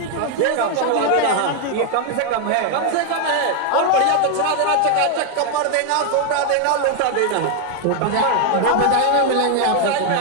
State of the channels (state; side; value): different; both; correlation 0.01